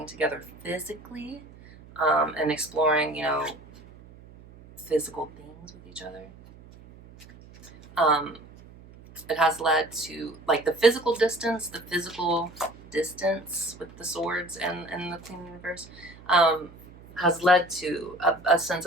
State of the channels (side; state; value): right; noise; hum, 21 dB below the sound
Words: together physically, and exploring, you know, physical things with each other. It has led to, like, the physical distance with the swords and the Queen Universe, has led to a sense